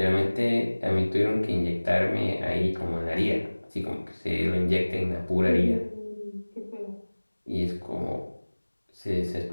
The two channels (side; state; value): both; inverted; correlation -1.00